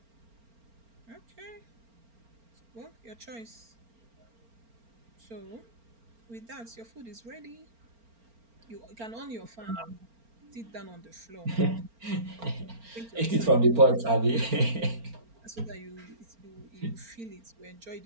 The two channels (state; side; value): late; left; 4.4 ms